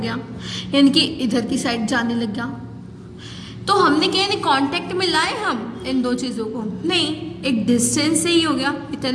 यानी कि इधर की साइड जाने लग गया. तो हमने क्या नहीं कांटेक्ट में लाए हम इन दो चीज़ों को, नहीं, एक डिस्टेंस से ही हो गया.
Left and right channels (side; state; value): both; identical; correlation 1.00